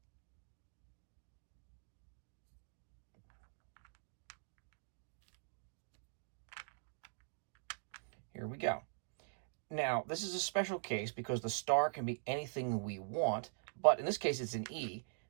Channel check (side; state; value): left; silent; digital silence